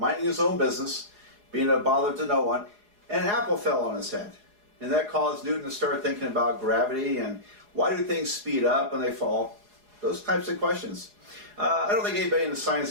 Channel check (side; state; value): left; late; 4.8 ms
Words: his own business, being a bother to no one, and an apple fell on his head. And that caused Newton to start thinking about gravity and why do things speed up when they fall? Those types of questions. I don't think anybody in the